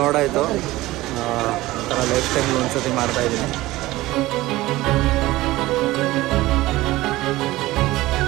ಒಂಥರ ಲೈಫ್ ಟೈಮ್ಗೆ ಒಂದ್ಸತಿ ಮಾಡ್ತಾಯಿದ್ದೀನಿ.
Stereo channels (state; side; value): quieter; left; 18.1 dB